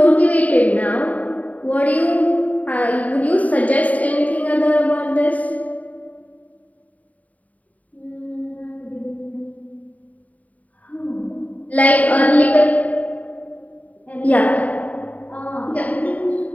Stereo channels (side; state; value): right; late; 0.071 ms